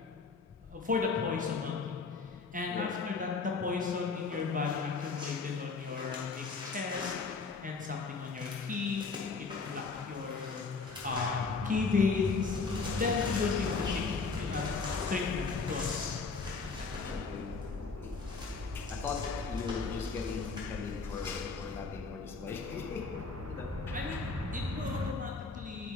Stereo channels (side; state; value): right; quieter; 4.4 dB